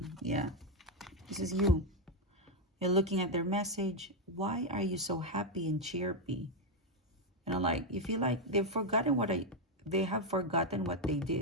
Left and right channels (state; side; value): normal; both; correlation 0.03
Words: Yeah, this is you. You're looking at their message. Why are you so happy and chirpy? Like, you feel like they have forgotten what they